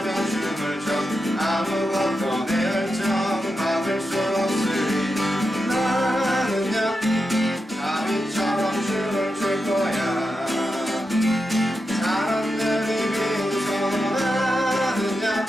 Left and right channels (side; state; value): both; normal; correlation 0.88